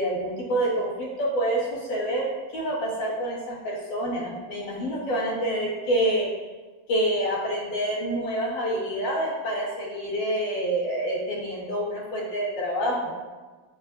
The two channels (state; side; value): late; right; 12 ms